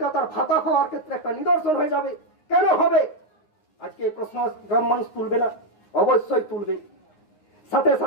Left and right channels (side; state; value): right; late; 9.7 ms